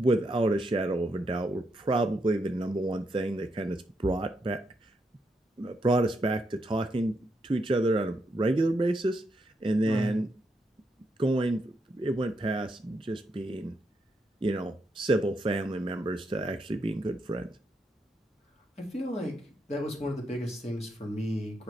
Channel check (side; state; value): both; normal; correlation 0.81